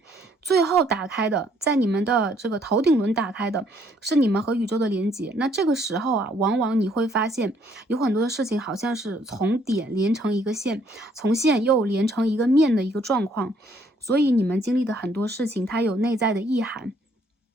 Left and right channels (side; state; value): both; normal; correlation 0.66